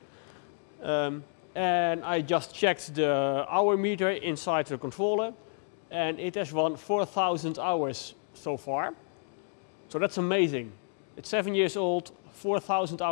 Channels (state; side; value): silent; right; 58 dB below the other